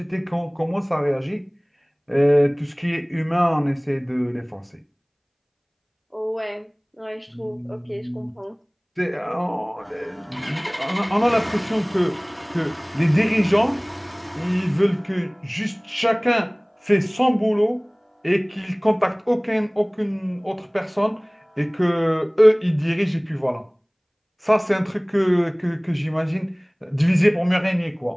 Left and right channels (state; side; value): identical; both; correlation 1.00